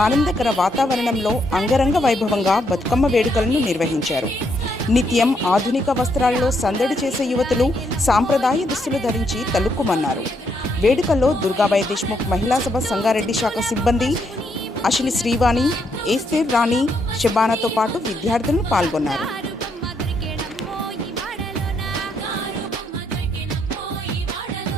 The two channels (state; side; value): normal; both; correlation 0.76